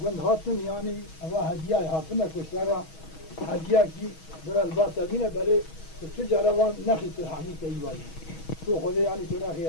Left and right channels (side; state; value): right; late; 6.3 ms